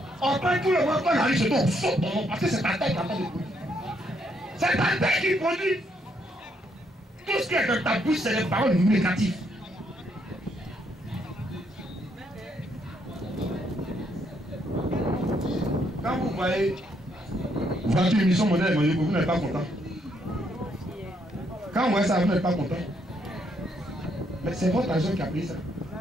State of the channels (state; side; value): normal; both; correlation 0.74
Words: On prend tout le monde, quand on arrive chez toi, on saute ton nom, parce que c'est ta tête qui a pas de produit. C'est ta tête qui produit. Tout ce qui est dans ta bouche, c'est les paroles négatives. Quand vous voyez voiture émission modèle, vous n'êtes pas content. Quand vous voyez ça, vous n'êtes pas content. Mais c'est votre argent qui a pris ça.